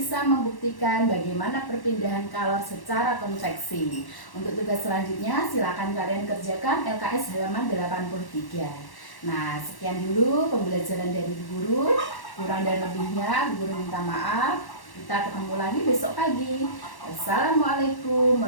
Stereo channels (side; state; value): right; late; 1.1 ms